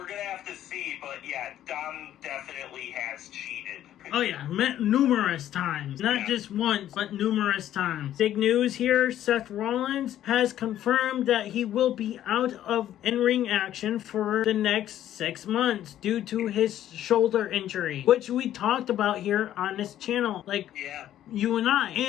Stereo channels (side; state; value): right; quieter; 11.9 dB